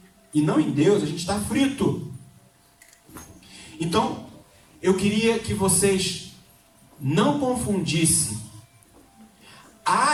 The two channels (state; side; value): identical; both; correlation 1.00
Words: e não em Deus, a gente está frito. Então, eu queria que vocês não confundissem